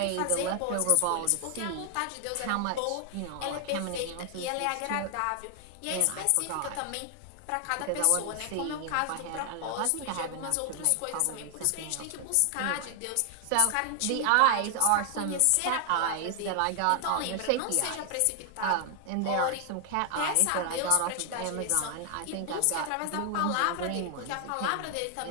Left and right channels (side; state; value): both; different; correlation 0.00